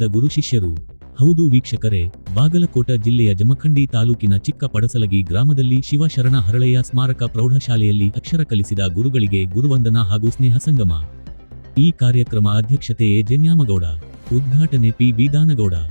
ಗುರು ಶಿಷ್ಯರು. ಹೌದು ವೀಕ್ಷಕರೇ, ಬಾಗಲಕೋಟ ಜಿಲ್ಲೆಯ ಜಮಖಂಡಿ ತಾಲೂಕಿನ ಚಿಕ್ಕ ಪಡಸಲಗಿ ಗ್ರಾಮದಲ್ಲಿ ಶಿವಶರಣ ಹರಳಯ್ಯ ಸ್ಮಾರಕ ಪ್ರೌಢಶಾಲೆಯಲ್ಲಿ ಅಕ್ಷರ ಕಲಿಸಿದ ಗುರುಗಳಿಗೆ ಗುರುವಂದನಾ ಹಾಗೂ ಸ್ನೇಹ ಸಂಗಮ. ಈ ಕಾರ್ಯಕ್ರಮ ಅಧ್ಯಕ್ಷತೆ ಎ ಜನ್ಯಾಮಗೌಡ, ಉದ್ಘಾಟನೆ ಪಿ ಬೀದಾನಗೌಡ.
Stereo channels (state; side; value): inverted; both; correlation -1.00